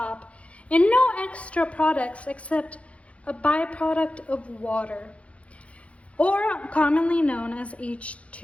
and no extra products except a byproduct of water, or commonly known as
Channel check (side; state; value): right; late; 0.063 ms